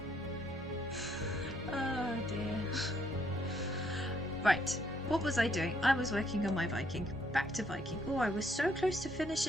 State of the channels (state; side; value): normal; both; correlation 0.69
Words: Oh dear. Right, what was I doing? I was working on my Viking. Back to Viking. Oh, I was so close to